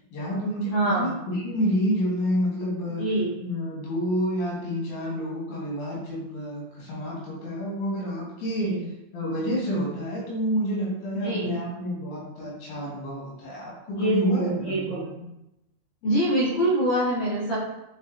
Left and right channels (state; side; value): late; right; 22 ms